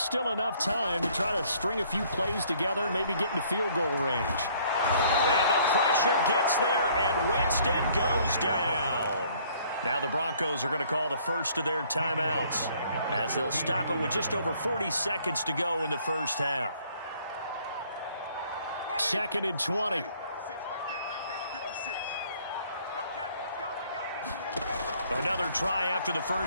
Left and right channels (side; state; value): both; inverted; correlation -0.60